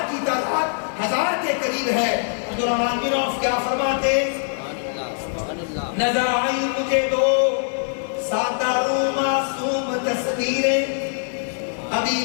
کی تعداد 1000 کے قریب ہے۔ عبد الرحمن بن عوف کیا فرماتے؟ نظر آئی مجھے 2 سادہ رو معصوم تصویریں، ابی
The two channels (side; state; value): right; silent; 64 dB below the other